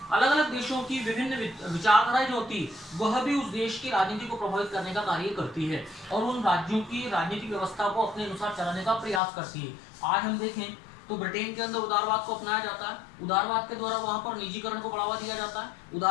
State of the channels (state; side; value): drops out; right; at 9.2 s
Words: अलग अलग देशों की विभिन्न विचारधाराएं जो होती है वह भी उस देश की राजनीति को प्रभावित करने का कार्य करती है और उन राज्यों की राजनीतिक व्यवस्था को अपने अनुसार चलाने का प्रयास करती है। आज हम देखें तो ब्रिटेन के अंदर उदारवाद को अपनाया जाता है। उदारवाद के द्वारा वहां पर निजीकरण को बढ़ावा दिया जाता है।